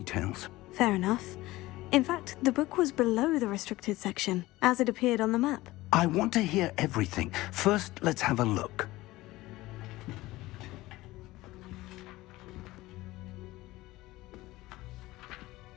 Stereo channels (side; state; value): right; quieter; 18.4 dB